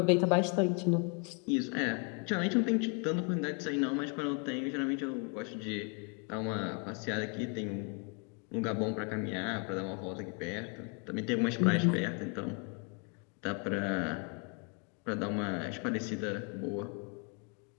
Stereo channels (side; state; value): right; quieter; 37.1 dB